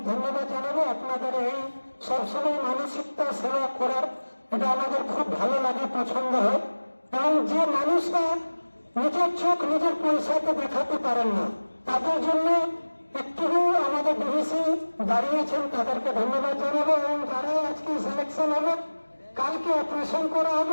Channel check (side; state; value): both; inverted; correlation -1.00